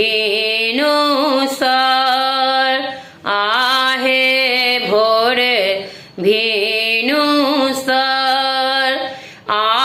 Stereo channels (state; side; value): identical; both; correlation 1.00